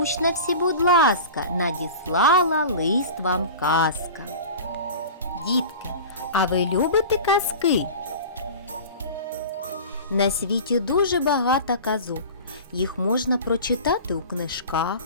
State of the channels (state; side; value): inverted; both; correlation -0.35